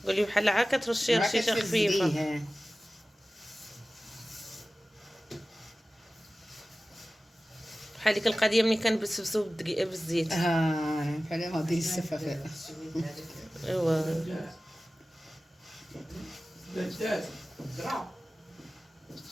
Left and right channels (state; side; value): normal; both; correlation 0.96